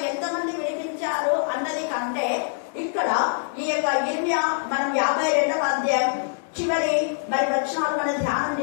ఎంతమంది విడిపించారు అన్నది కంటే, ఇక్కడ ఈ యొక్క ఇర్మియా మనం 52వ అధ్యాయం చివరి మరి వచనాలు మనం ధ్యానం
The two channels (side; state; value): right; silent; digital silence